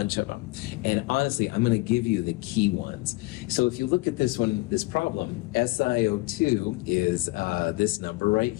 of them. And honestly, I'm going to give you the key ones. So if you look at this one, this problem, SiO2 is this number right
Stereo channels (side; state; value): right; quieter; 22.8 dB